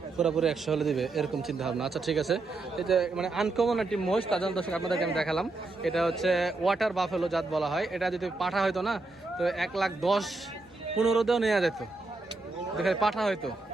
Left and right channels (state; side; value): quieter; left; 3.4 dB